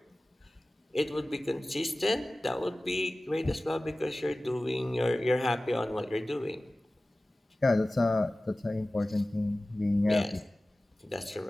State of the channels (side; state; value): both; normal; correlation 0.97